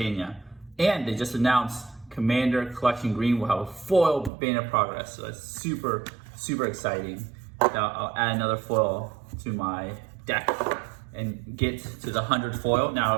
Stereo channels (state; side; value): drops out; left; at 4.3 s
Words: And they just announced Commander Collection Green will have a foil Banner Progress, so that's super, super exciting. Now I'll add another foil to my deck and get to the 100 foil.